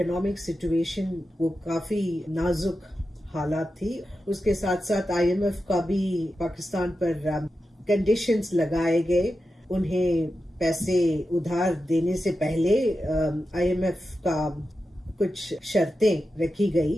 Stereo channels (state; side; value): normal; both; correlation 0.90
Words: सिचुएशन वो काफी नाजुक हालात थी। उसके साथ साथ IMF का भी पाकिस्तान पर कंडीशंस लगाए गए। उन्हें पैसे उधार देने से पहले IMF का कुछ शर्तें रखी